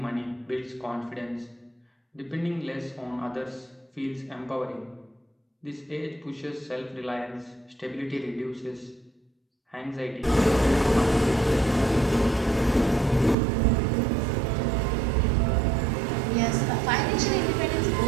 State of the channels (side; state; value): left; drops out; at 13.4 s